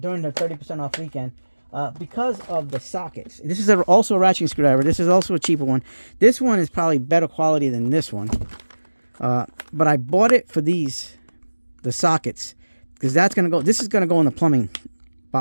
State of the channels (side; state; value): both; inverted; correlation -1.00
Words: the 30% off weekend. Because of the sockets. This is also a ratcheting screwdriver. This is also a cheaper one. This one is probably better quality than this one. But I bought it for the sockets, because this is gonna go in the plumbing